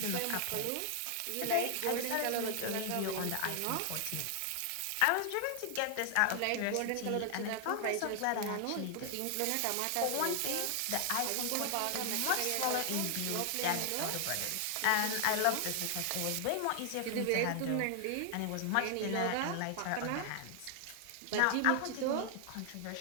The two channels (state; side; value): different; both; correlation 0.00